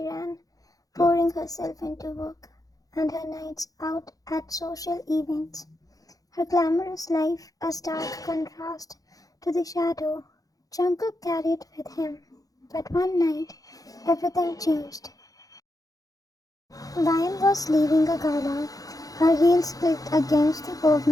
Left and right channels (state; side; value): late; right; 0.17 ms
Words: ran, pouring herself into work, and her nights out at social events. Her glamorous life a stark contrast to the shadow Jungkook carried with him. But one night, everything changed. Ryan was leaving a gala. Her heels clicked against the